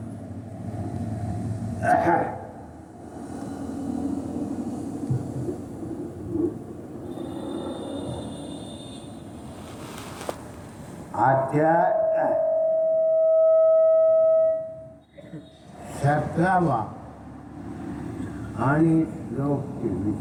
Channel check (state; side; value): identical; both; correlation 1.00